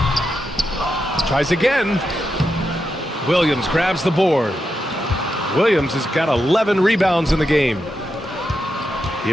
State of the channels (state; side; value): normal; both; correlation 0.86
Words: Tries again. Williams grabs the board. Williams has got 11 rebounds in the game.